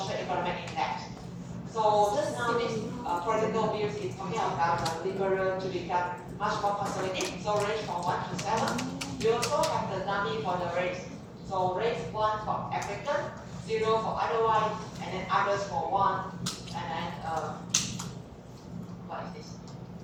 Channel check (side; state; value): both; identical; correlation 1.00